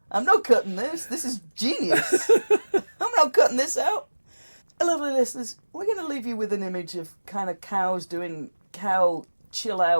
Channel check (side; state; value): both; inverted; correlation -1.00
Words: I'm not cutting this. This is genius. I'm not cutting this out. Lovely listeners, we're going to leave you with an image of kind of cows doing cow